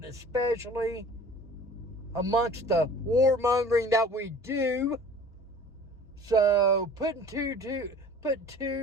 especially amongst the warmongering that we do. So put two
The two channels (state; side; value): normal; both; correlation 0.46